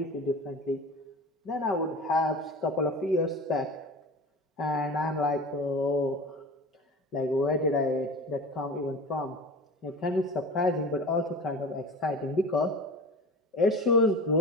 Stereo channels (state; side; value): normal; both; correlation 0.34